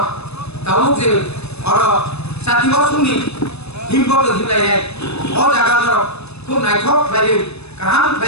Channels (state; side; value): late; right; 0.79 ms